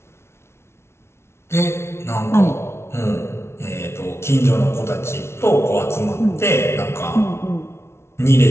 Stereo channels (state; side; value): late; right; 0.12 ms